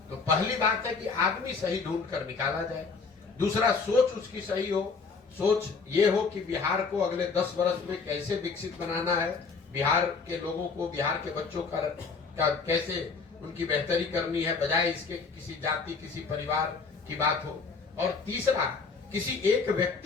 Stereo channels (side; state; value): right; quieter; 4.8 dB